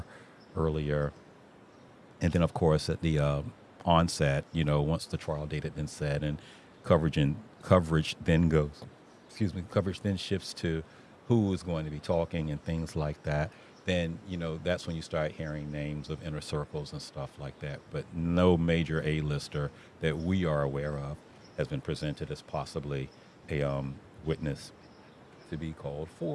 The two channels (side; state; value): both; identical; correlation 1.00